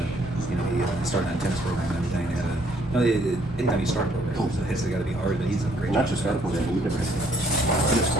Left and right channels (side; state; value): both; normal; correlation 0.65